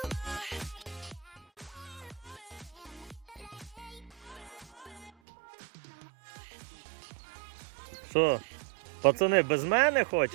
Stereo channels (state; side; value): drops out; left; at 5.1 s